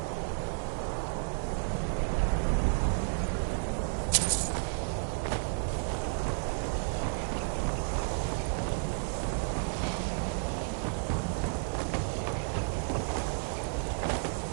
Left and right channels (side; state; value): left; silent; 56 dB below the other